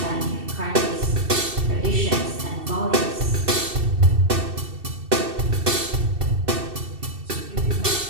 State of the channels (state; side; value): late; left; 2.6 ms